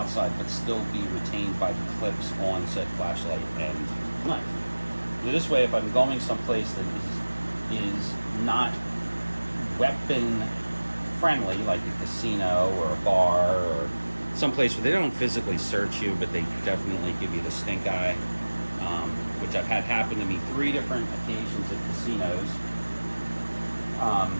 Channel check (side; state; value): both; inverted; correlation -1.00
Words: but still be retained by the clips on said flashlight and knife. This way, if I'm going someplace that is not weapon friendly, like a casino or a bar or someplace where they don't physically search you, but they definitely give you the stink eye, which I've had happen to me 3 different occasions at casinos.